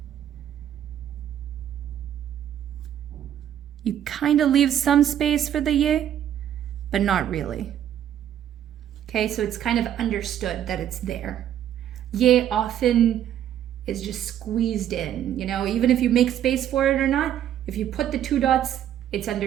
You kind of leave some space for the ye, but not really. Okay, so it's kind of understood that it's there. Ye often is just squeezed in, you know, even if you make space for it or not, if you put the two dots, it's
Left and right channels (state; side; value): quieter; left; 10.6 dB